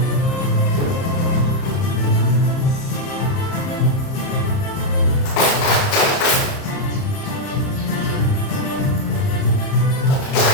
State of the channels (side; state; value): right; late; 30 ms